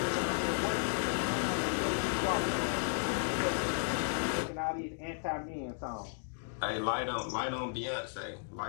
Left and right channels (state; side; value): silent; right; digital silence